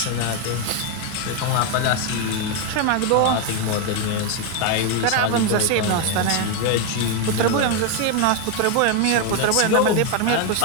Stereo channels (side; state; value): both; different; correlation 0.01